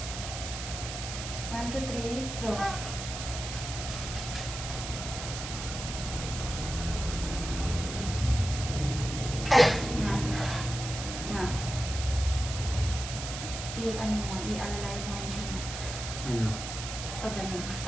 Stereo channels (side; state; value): right; noise; hiss, 7 dB below the sound